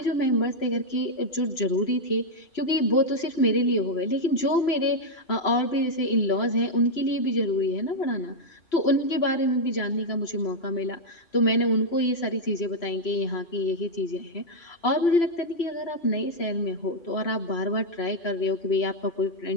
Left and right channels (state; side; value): late; right; 3.0 ms